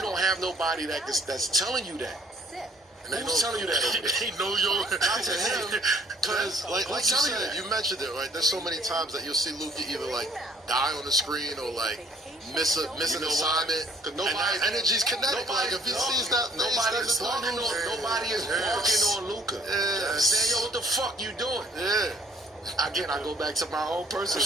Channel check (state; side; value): normal; both; correlation 0.58